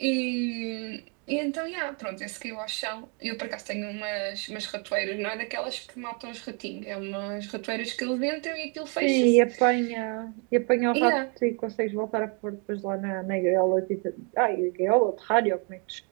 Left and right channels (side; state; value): left; quieter; 36.5 dB